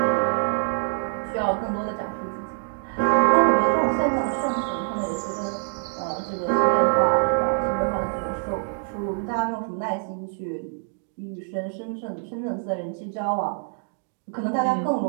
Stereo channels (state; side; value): silent; left; 62 dB below the other